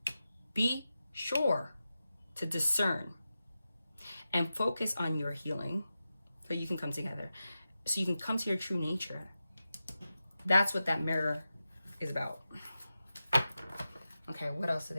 Be sure to discern and focus on your healing so you can come together, so you can come to your true nature. That's what that mirror is about. Okay, what else do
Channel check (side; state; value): both; inverted; correlation -0.92